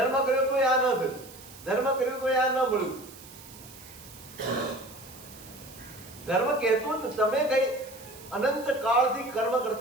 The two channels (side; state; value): right; noise; hiss, 18 dB below the sound